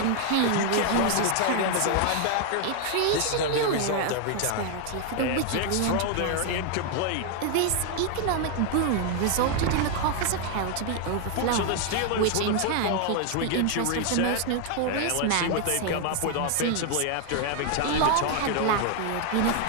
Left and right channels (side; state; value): both; different; correlation 0.00